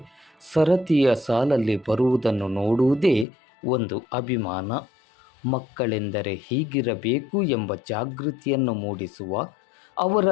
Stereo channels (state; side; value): drops out; right; at 3.2 s